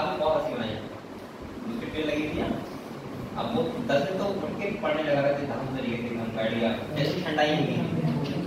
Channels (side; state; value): both; identical; correlation 1.00